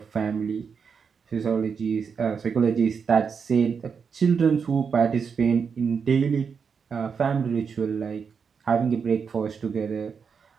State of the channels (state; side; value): quieter; left; 6.1 dB